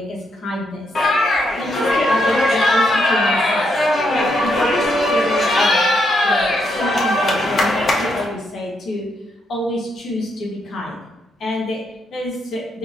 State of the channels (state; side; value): normal; both; correlation 0.78